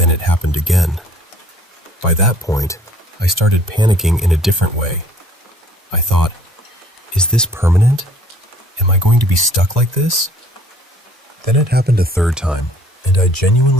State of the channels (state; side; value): normal; both; correlation 0.57